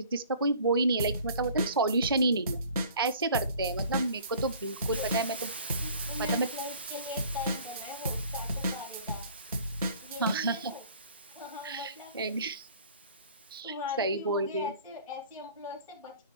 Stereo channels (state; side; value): inverted; both; correlation -0.50